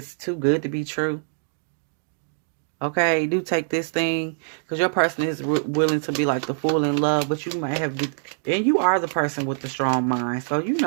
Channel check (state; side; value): silent; left; digital silence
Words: too good to be true. Okay, do take this thing, because your person is willing to be like the fool in love, but you might have, and you are the person with the strong mind, so you